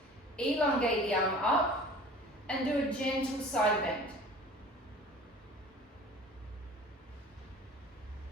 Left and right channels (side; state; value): both; normal; correlation 0.43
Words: Elongate the arm up and do a gentle side bend.